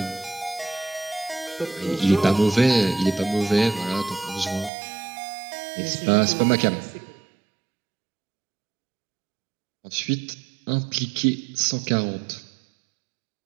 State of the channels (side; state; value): left; drops out; at 4.7 s